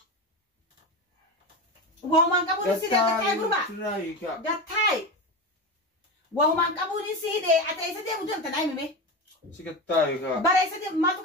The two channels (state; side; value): normal; both; correlation 0.21